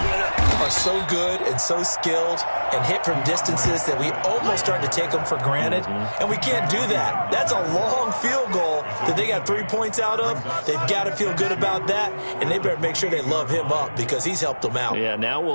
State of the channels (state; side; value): inverted; both; correlation -1.00